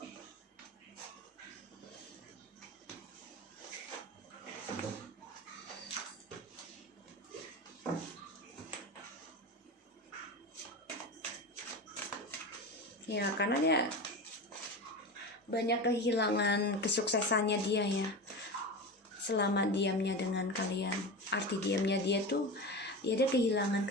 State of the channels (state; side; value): normal; both; correlation 0.25